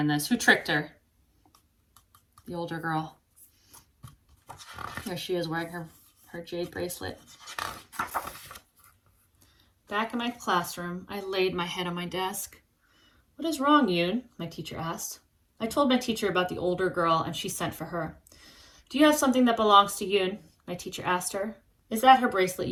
this? Who tricked her? The older girl. There she is wearing her jade bracelet. Back in my classroom, I laid my head on my desk. What is wrong, Yoon? My teacher asked. I told my teacher about the older girl and she sent for her. Do you have something that belongs to Yoon? My teacher asked her. Is that her bracelet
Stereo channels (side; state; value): both; identical; correlation 1.00